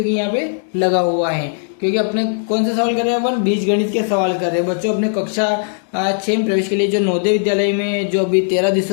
यहाँ पे लगा हुआ है, क्योंकि अपने कौन सा सवाल कर रहे हैं? अपन बीजगणित के सवाल कर रहे हैं बच्चों। अपने कक्षा 6 में प्रवेश के लिए जो नवोदय विद्यालय में जो अभी 13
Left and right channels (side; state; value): right; silent; digital silence